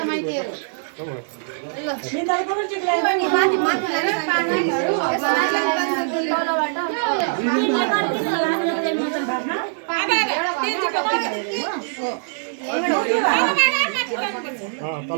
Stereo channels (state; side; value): silent; left; digital silence